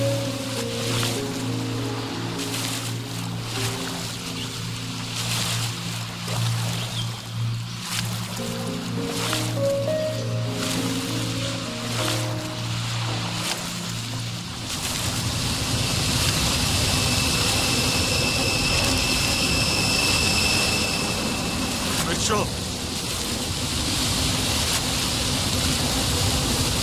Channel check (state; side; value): identical; both; correlation 1.00